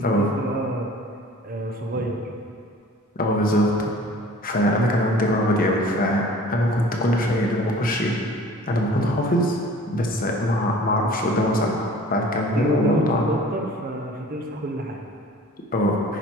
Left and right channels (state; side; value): normal; both; correlation 0.47